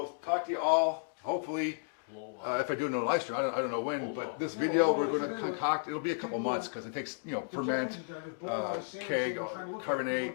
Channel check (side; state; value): right; silent; digital silence